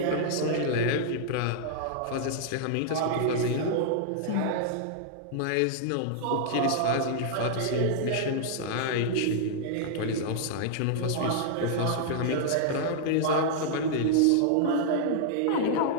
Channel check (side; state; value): both; different; correlation -0.01